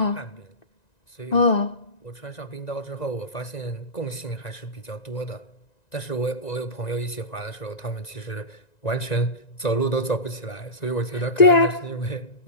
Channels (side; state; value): right; late; 1.9 ms